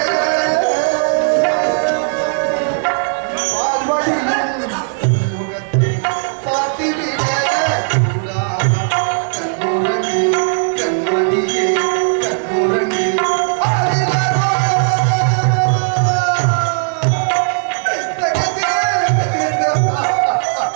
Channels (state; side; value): silent; left; 57 dB below the other